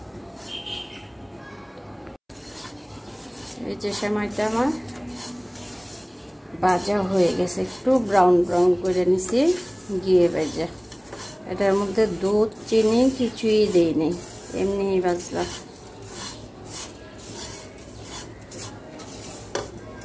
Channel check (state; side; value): identical; both; correlation 1.00